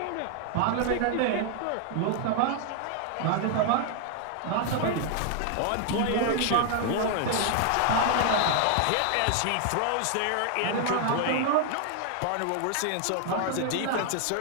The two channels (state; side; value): different; both; correlation 0.00